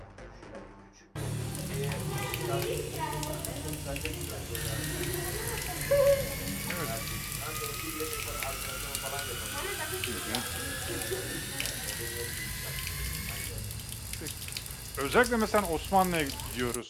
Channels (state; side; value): identical; both; correlation 1.00